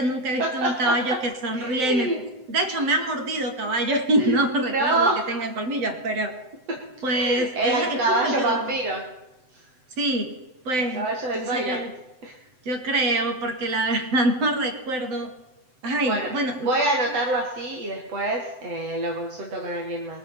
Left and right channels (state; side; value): late; left; 7.8 ms